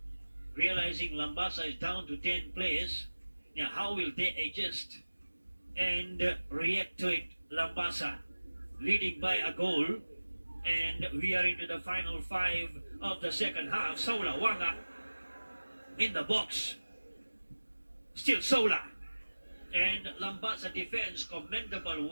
realizing Lambasa is down to 10 players. Now how will they adjust and react to it? Lambasa leading by a goal, and we are into the final 5 of the second half. Sola Wanga in the box, still Sola, and Lambasa defense, commendable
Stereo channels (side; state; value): both; inverted; correlation -1.00